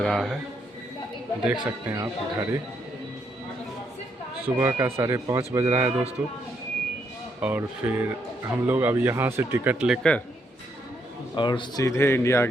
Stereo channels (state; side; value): normal; both; correlation 0.76